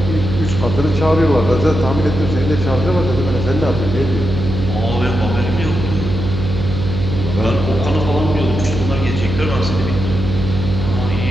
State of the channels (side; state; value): right; noise; hum, 4 dB below the sound